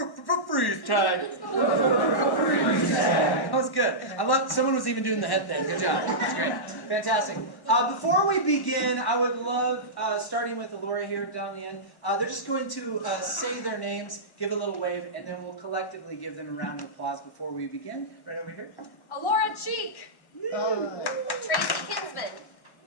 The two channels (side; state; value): right; late; 1.1 ms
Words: Tag. Freeze Tag. That was good. I love, someone was even doing the head thing. Good job. That's great. Fantastic. Before we begin, I would love, starting with Alora here down the end, they're just going to say their names, give a little wave, and then we'll collectively give them a round of applause before we begin. Right over here. Alora Cheek. Tracy Kinsman.